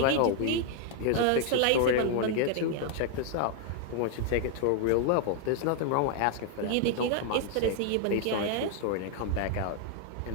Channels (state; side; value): different; both; correlation 0.00